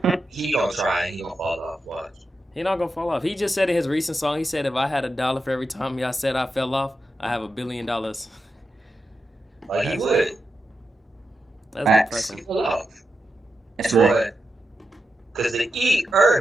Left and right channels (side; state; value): both; normal; correlation 0.88